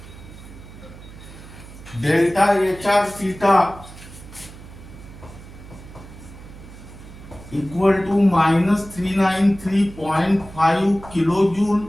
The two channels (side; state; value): right; noise; hum, 17 dB below the sound